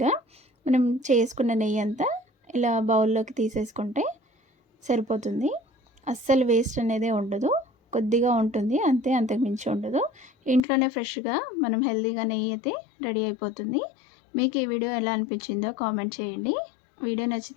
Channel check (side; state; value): right; drops out; at 10.6 s